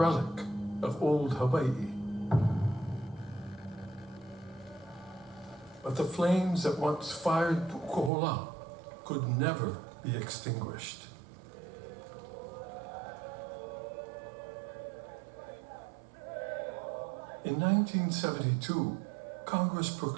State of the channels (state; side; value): drops out; left; at 8.1 s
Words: of old Hawaii. But the flames that once fired Pu'ukohola could never be extinguished. In 1972, Congress